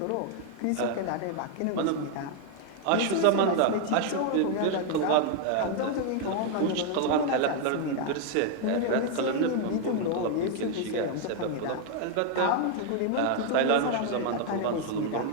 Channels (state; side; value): different; both; correlation 0.00